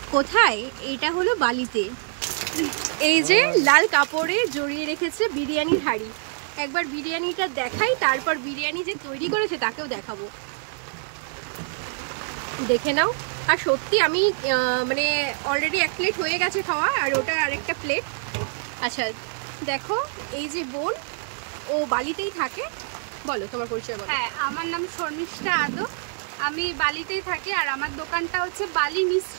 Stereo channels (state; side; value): silent; left; 62 dB below the other